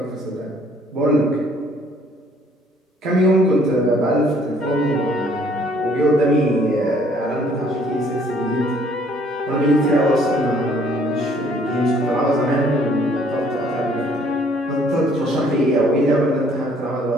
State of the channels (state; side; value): normal; both; correlation 0.61